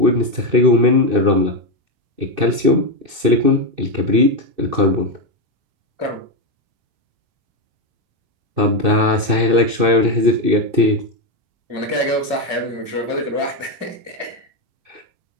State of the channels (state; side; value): late; left; 2.6 ms